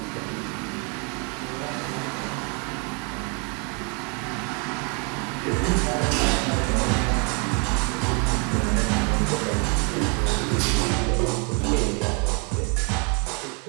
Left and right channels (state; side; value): quieter; left; 34.3 dB